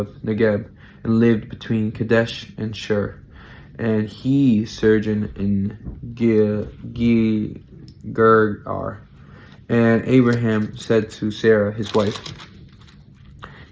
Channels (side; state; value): both; identical; correlation 1.00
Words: Negeb and lived between Kadesh and Shur. And he sojourned in Gergar. And Abraham said to Sarah, his wife,